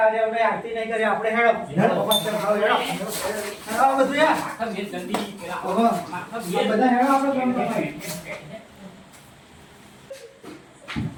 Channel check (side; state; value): both; identical; correlation 1.00